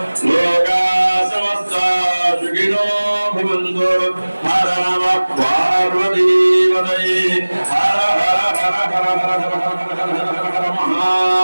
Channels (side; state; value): both; inverted; correlation -1.00